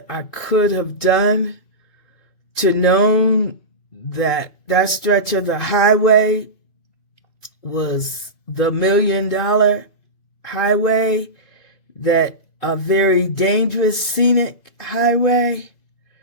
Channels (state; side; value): late; right; 2.5 ms